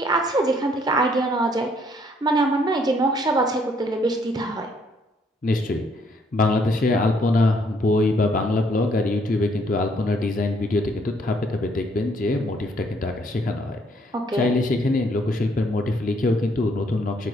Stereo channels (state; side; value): normal; both; correlation 0.67